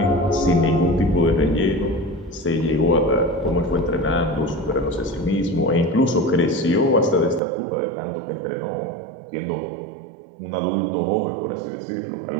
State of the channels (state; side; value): drops out; left; at 7.4 s